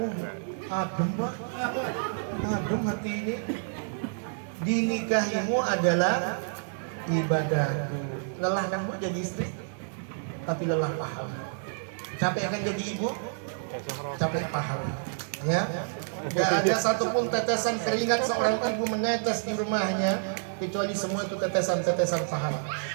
Adem, Pak. Adem hati ini. Dinikahimu adalah ibadahku. Lelah kan Bu jadi istri, tapi lelah pahala. Capek kan jadi ibu, capek pahala. Ya, gak ada satupun tetesan keringat seorang ibu menetes di rumahnya, kecuali semua itu tetesan-tetesan pahala.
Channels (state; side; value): silent; left; 59 dB below the other